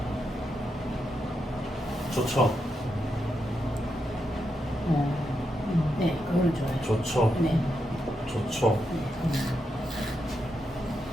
좋죠. 네, 그거는 좋아요. 좋죠. 네. 좋죠.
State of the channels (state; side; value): normal; both; correlation 0.84